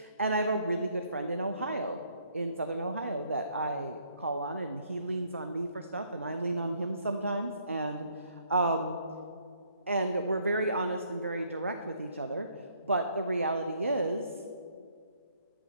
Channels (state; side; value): inverted; both; correlation -0.67